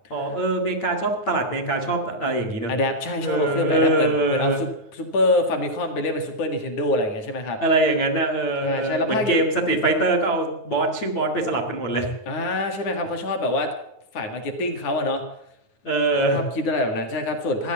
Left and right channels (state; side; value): late; right; 9.4 ms